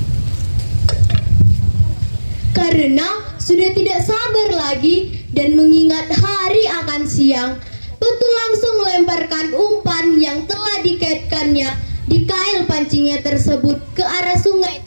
Karena sudah tidak sabar lagi dan mengingat hari akan siang, Petu langsung melemparkan umpan yang telah dikaitkannya di kail pancingnya tersebut ke arah sungai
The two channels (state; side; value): inverted; both; correlation -1.00